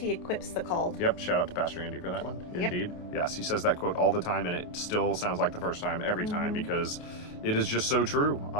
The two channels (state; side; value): late; right; 28 ms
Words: equips the called. Yep, shout out to Pastor Andy for that one. Indeed. Yes, he says that quote all the time, and it still sounds like the first time every time, because it is just so true.